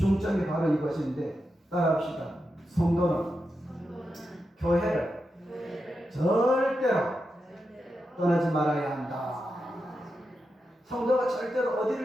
바로 이것인데 따라합시다. 성도는 교회를 절대로 떠나지 말아야 한다. 성도가 절대로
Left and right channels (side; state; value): both; normal; correlation 0.88